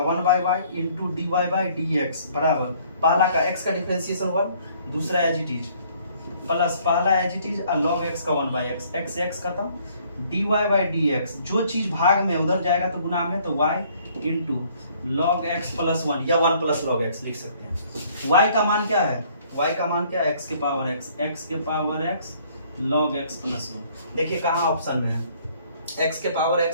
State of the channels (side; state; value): both; inverted; correlation -0.61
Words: 1/y into dy by dx बराबर पहला का x का डिफरेंशिएशन 1, दूसरा एज इट इज, प्लस पहला एज इट इज और log x का 1/x, x x खत्म, dy बाई dx, जो चीज भाग में उधर जाएगा तो गुना में, तो y into log x plus 1 या 1 प्लस log x लिख सकते हैं। y का मान क्या है, y का मान क्या है, x के power x log x plus 1। देखिए कहाँ ऑप्शन में है, x के पावर